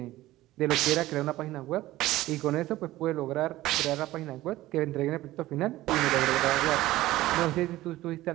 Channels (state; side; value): quieter; left; 16.4 dB